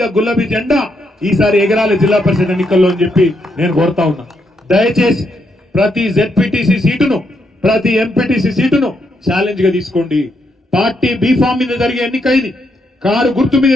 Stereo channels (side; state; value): both; normal; correlation 0.78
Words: గులాబీ జెండా ఈసారి ఎగరాలి జిల్లా పరిషత్ ఎన్నికల్లో అని చెప్పి నేను కోరుతా ఉన్నా. దయచేసి ప్రతి జెడ్పీటీసీ సీటును, ప్రతి ఎంపీటీసీ సీటును ఛాలెంజ్ గా తీసుకోండి. పార్టీ బీఫామ్ మీద జరిగే ఎన్నిక ఇది, కారు గుర్తు మీద